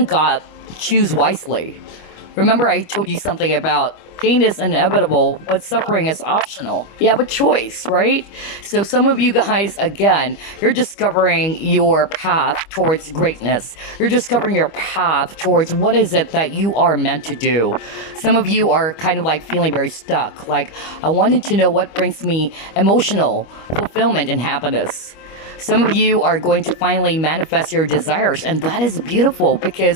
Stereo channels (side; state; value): right; late; 25 ms